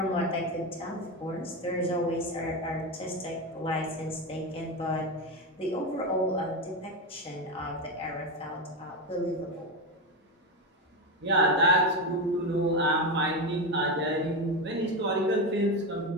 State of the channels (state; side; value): normal; both; correlation 0.15